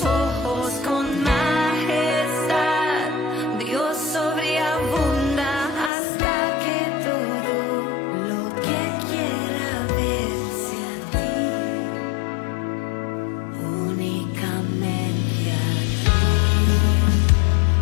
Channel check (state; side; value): drops out; right; at 5.9 s